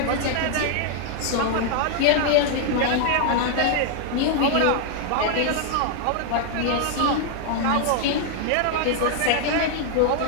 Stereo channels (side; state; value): both; different; correlation 0.00